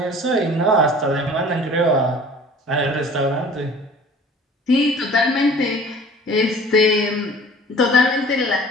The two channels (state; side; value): normal; both; correlation 0.46